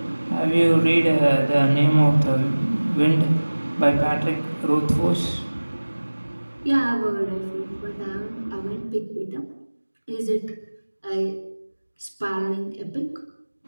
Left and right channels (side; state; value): both; inverted; correlation -1.00